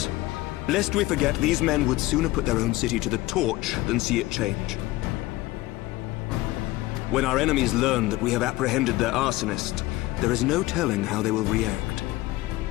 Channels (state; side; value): quieter; right; 18.4 dB